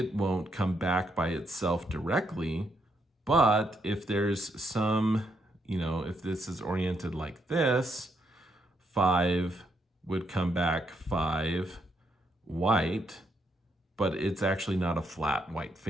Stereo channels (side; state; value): both; normal; correlation 0.77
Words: won't come back by itself directly. But if there's some, if this is oriented like this, 5 would come back 5 white, but it's actually not a flat white